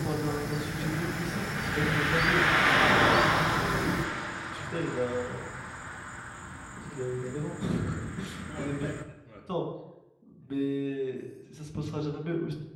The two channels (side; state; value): both; identical; correlation 1.00